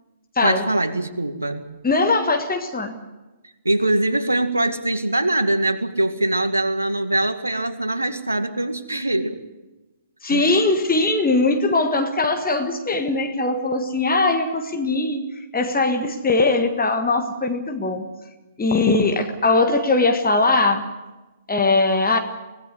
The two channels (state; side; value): inverted; both; correlation -0.46